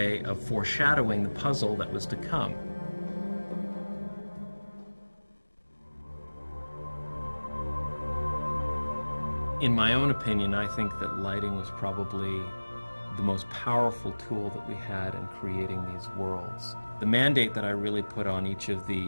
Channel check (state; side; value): inverted; both; correlation -1.00